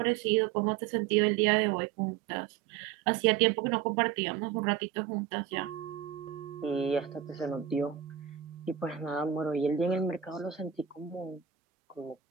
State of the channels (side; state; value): left; quieter; 9.6 dB